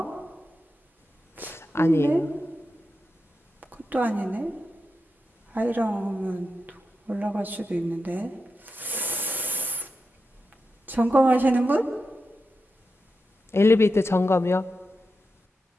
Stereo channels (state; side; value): normal; both; correlation 0.88